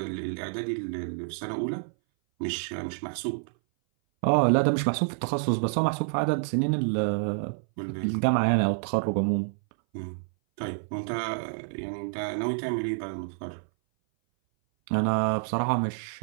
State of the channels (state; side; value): silent; left; 58 dB below the other